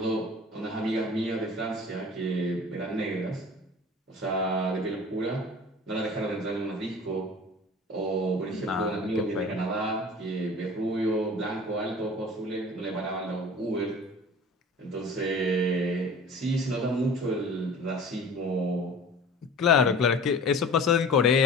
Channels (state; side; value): normal; both; correlation 0.41